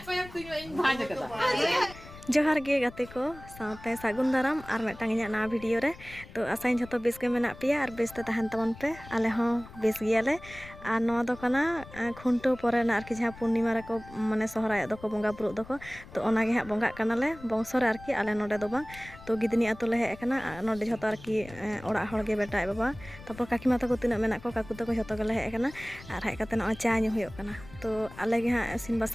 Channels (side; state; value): left; noise; rumble, 17 dB below the sound